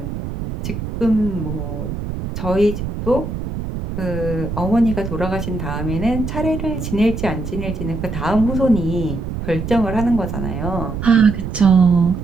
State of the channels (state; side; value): noise; right; rumble, 5 dB below the sound